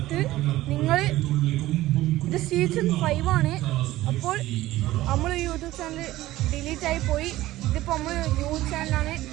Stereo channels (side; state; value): left; quieter; 16.2 dB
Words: നിങ്ങൾ ഇത് സീസൺ 5 ആണ്. അപ്പോൾ നമ്മൾ യൂട്യൂബ് ചാനൽ ഡിലീറ്റായി പോയി. ഇതിപ്പോൾ നമ്മൾ ന്യൂ ചാനലാണ്.